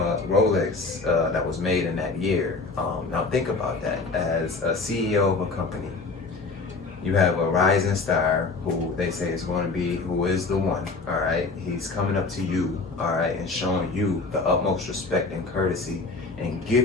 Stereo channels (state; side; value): quieter; right; 4.0 dB